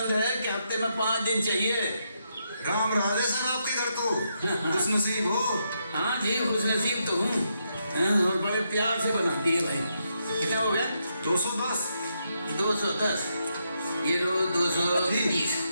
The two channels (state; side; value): inverted; both; correlation -0.80